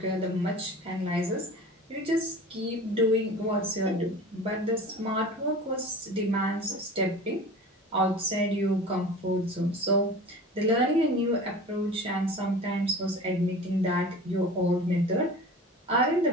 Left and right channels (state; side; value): normal; both; correlation 0.37